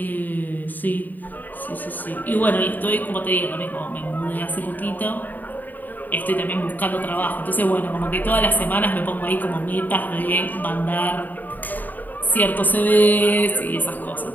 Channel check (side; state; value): right; late; 0.087 ms